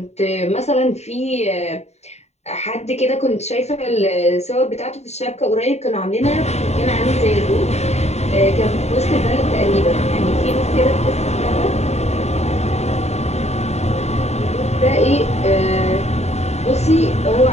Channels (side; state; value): right; late; 0.32 ms